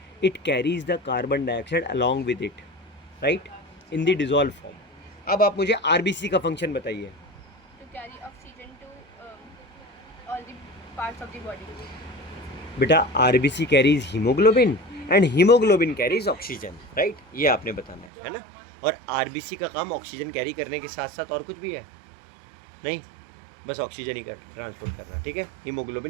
it carries the carbon dioxide along with it, right, in the dissolve form. अब आप मुझे आरबीसी का फंक्शन बताइए। To carry oxygen to all the parts of the body. बेटा RBC carries haemoglobin and haemoglobin carries oxygen, right, ये आपने बताना है ना। और आरबीसी का काम ऑक्सीजन कैरी करने के साथ साथ और कुछ भी है? नहीं, बस ऑक्सीजन ही कर ट्रांसपोर्ट करना, ठीक है।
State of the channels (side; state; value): left; drops out; at 18.1 s